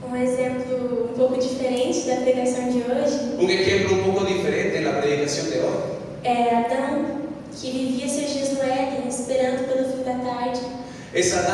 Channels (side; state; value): both; identical; correlation 1.00